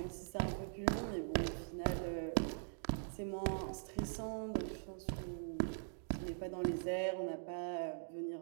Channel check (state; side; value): silent; left; digital silence